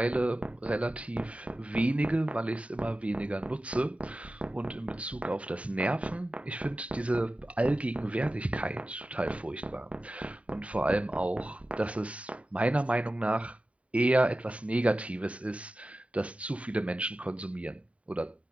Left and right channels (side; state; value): left; late; 0.065 ms